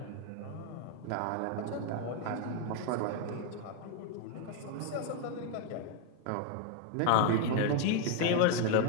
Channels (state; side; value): different; both; correlation 0.01